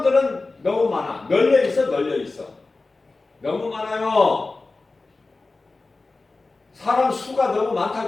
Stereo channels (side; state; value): right; quieter; 3.5 dB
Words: 너무 많아. 널려 있어. 너무 많아요. 사람 수가 너무